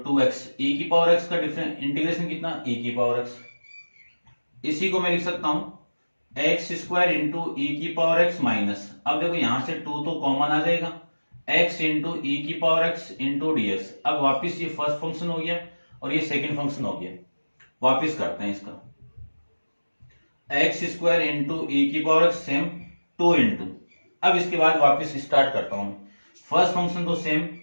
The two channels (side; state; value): both; inverted; correlation -1.00